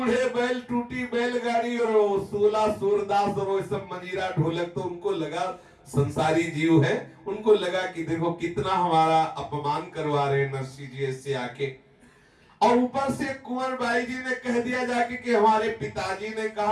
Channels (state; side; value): identical; both; correlation 1.00